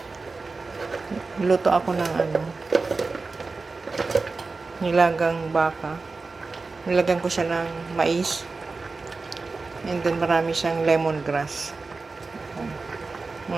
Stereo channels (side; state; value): left; quieter; 4.0 dB